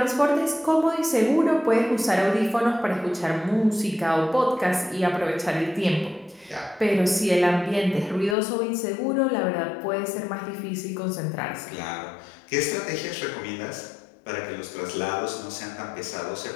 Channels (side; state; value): right; drops out; at 8.3 s